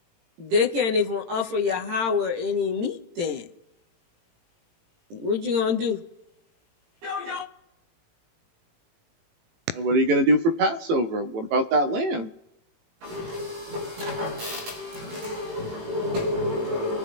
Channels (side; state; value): left; late; 18 ms